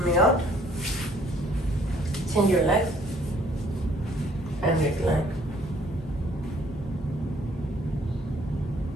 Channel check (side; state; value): both; normal; correlation 0.61